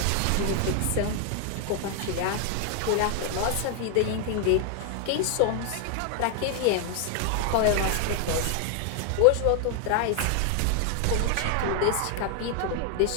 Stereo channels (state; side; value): different; both; correlation 0.00